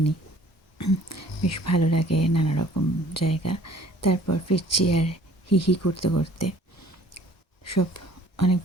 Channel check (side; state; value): both; normal; correlation 0.54